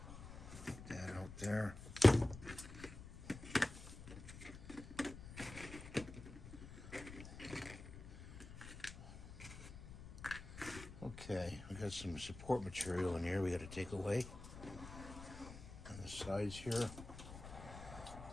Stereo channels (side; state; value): left; noise; rumble, 12 dB below the sound